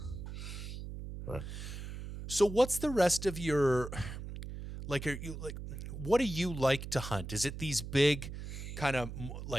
But So what's the rest of your, like, are you like, what do you like to hunt? Is it these big kind of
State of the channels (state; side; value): noise; right; hum, 8 dB below the sound